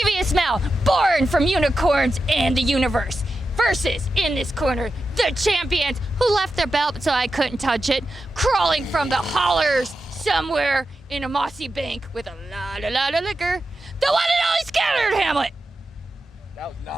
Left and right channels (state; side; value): normal; both; correlation 0.90